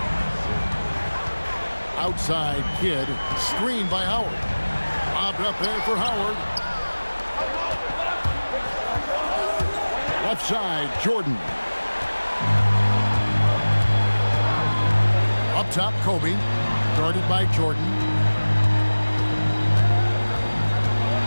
Outside Kidd. Screen by Howard. Lobbed up there for Howard. Left side, Jordan. Up top, Kobe. Guarded by Jordan.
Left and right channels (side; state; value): both; inverted; correlation -1.00